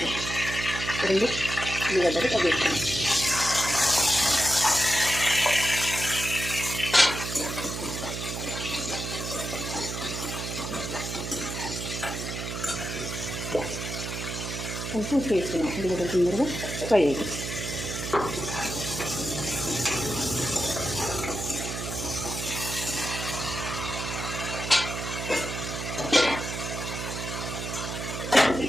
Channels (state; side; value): noise; right; hum, 5 dB below the sound